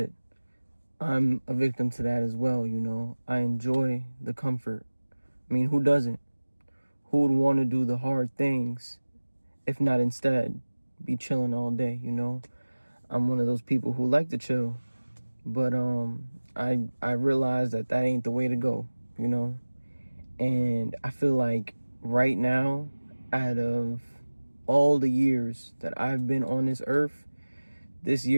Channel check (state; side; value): inverted; both; correlation -1.00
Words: I'm a victim to that as well, you know. I enjoy the comfort. I mean, who doesn't? Who would want to do the hard things if not instead be chilling all day, you know? I'm one of those people who like to chill, but I realize that ain't the way to go, you know? And I feel like right now, out of all the years that I've been on this earth, this